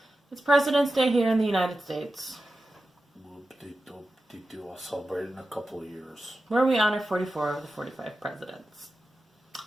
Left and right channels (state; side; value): normal; both; correlation 0.93